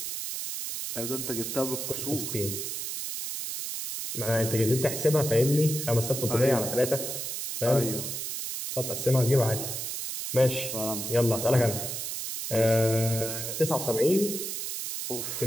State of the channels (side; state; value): right; noise; hiss, 4 dB below the sound